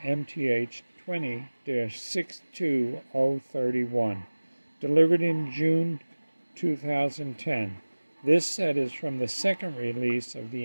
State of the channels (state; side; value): inverted; both; correlation -1.00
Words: 20-62031, delivered in June 2010. This set is from the second release of